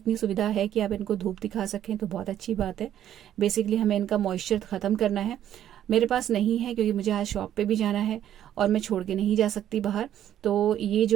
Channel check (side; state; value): left; quieter; 11.0 dB